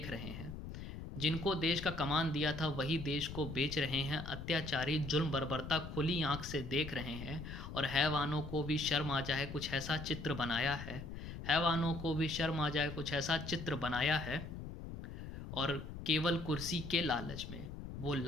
रहे हैं। जिनको देश का कमान दिया था वही देश को बेच रहे हैं। अत्याचारी जुल्म बर्बरता खुली आंख से देख रहे हैं। और हैवानों को भी शर्म आ जाए कुछ ऐसा चित्र बनाया है। हैवानों को भी शर्म आ जाए कुछ ऐसा चित्र बनाया है। और केवल कुर्सी के लालच में वो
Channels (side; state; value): left; noise; rumble, 9 dB below the sound